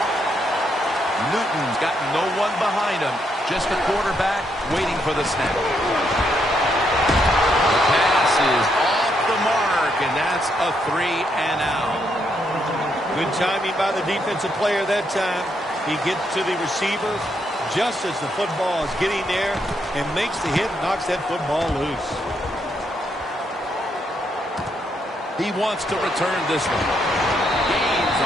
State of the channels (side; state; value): both; normal; correlation 0.77